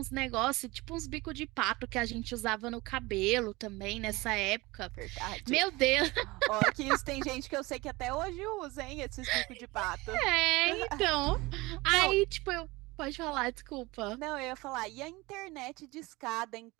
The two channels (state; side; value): quieter; left; 22.2 dB